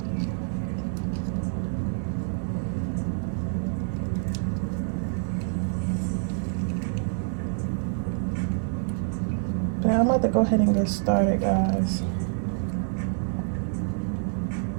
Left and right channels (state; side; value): silent; left; 60 dB below the other